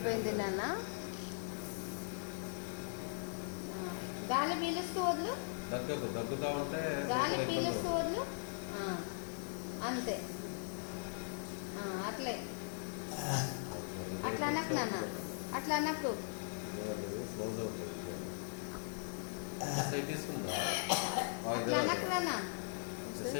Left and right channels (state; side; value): silent; right; 51 dB below the other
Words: నాన్న. గాలి పీలుస్తూ వదులు, దగ్గుతా ఉంటే గాలి పీలుస్తూ వదులు. అంతే, అట్లే అట్లా అనకు నాన్న, అట్లా అనకు. అట్లా అనకు నాన్న.